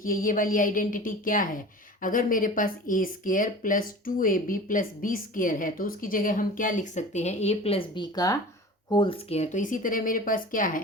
ये वाली आइडेंटिटी क्या है। अगर मेरे पास a² plus 2ab plus b² है तो उसकी जगह हम क्या लिख सकते हैं a प्लस b का होल स्क्वायर। तो इसी तरह मेरे पास क्या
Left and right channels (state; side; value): normal; both; correlation 0.37